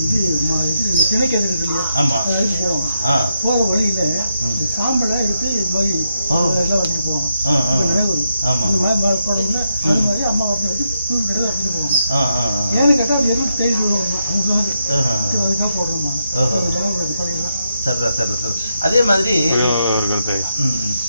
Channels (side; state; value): both; inverted; correlation -0.83